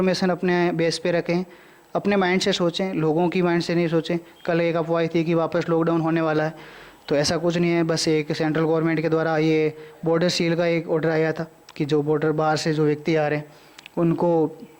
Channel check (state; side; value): identical; both; correlation 1.00